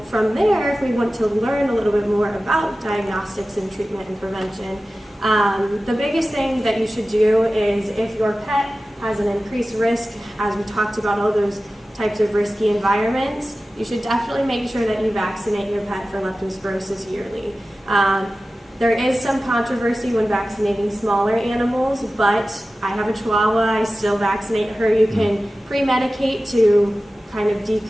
from there, if we want to learn a little bit more about diagnostics and treatment and prevention, the biggest thing that you should do is if your pet has an increased risk, as we talked about all those types of risky environments, you should definitely make sure that you vaccinate your pet for leptospirosis yearly. There is some controversy when vaccinating smaller animals, but I have a Chihuahua, I still vaccinate her. You can pre-medicate to kind of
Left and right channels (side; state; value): both; normal; correlation 0.95